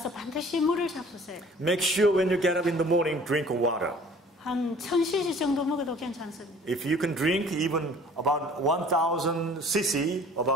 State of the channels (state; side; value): normal; both; correlation 0.51